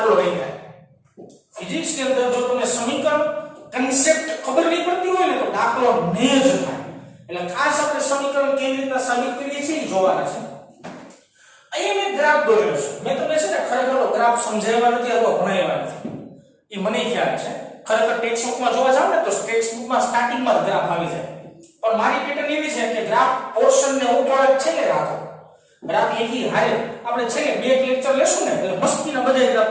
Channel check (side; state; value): both; identical; correlation 1.00